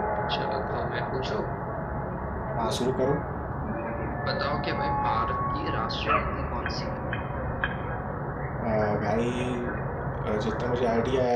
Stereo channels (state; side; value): identical; both; correlation 1.00